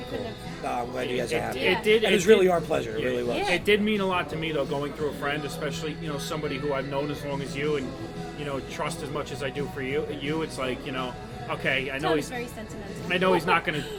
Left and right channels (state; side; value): identical; both; correlation 1.00